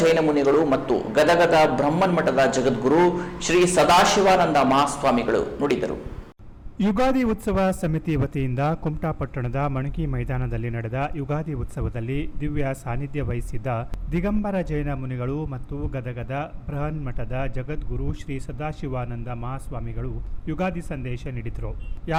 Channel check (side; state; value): both; identical; correlation 1.00